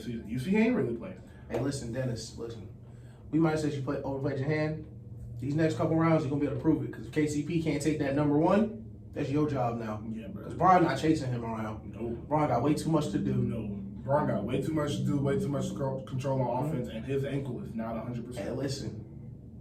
season. You see, he ain't really playing. Hey, listen, Dennis, we might have said you overplayed your hand. These next couple rounds, you're gonna be able to prove it. Because if KCP can't take that number one, that's your job now. Yeah, bro. Because Bron not chasing him around. No. Bron got way too much to do. No. Bron got way too much to do, way too much control on offense, and his ankle is not 100%. Hey, listen,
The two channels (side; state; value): both; identical; correlation 1.00